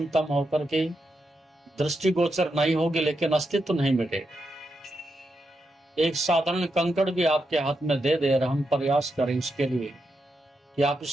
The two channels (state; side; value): normal; both; correlation 0.85